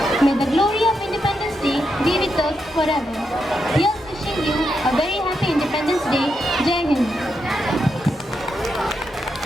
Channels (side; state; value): both; normal; correlation 0.83